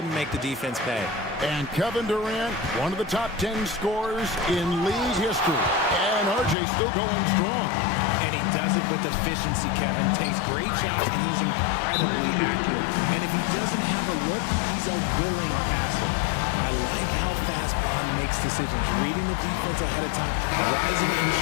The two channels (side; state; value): right; drops out; at 6.6 s